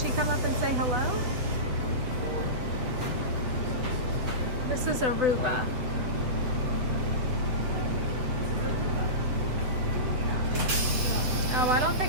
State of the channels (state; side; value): late; left; 7.6 ms